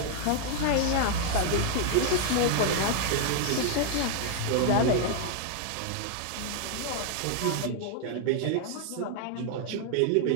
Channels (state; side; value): different; both; correlation 0.00